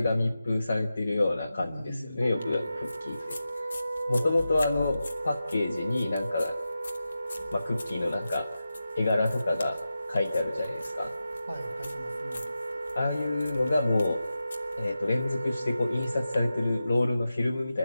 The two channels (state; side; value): inverted; both; correlation -0.92